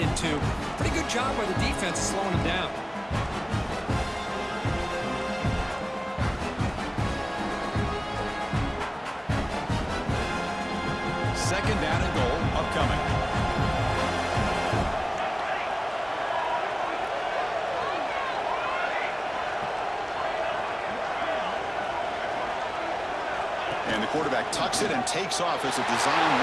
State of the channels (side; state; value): both; identical; correlation 1.00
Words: Pretty good job by the defense slowing them down. Second down and goal upcoming. And the quarterback tucks it and takes off as a design